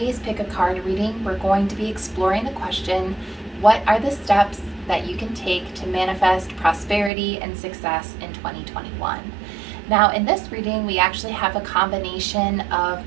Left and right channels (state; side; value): drops out; left; at 7.1 s